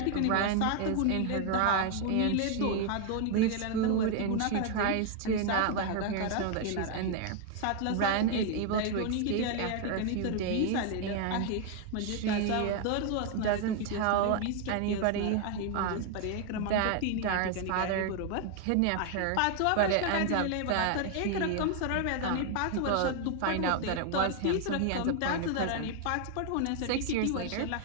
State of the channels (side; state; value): both; different; correlation 0.00